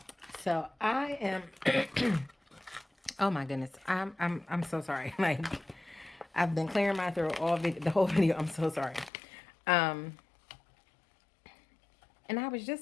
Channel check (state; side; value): drops out; right; at 9.1 s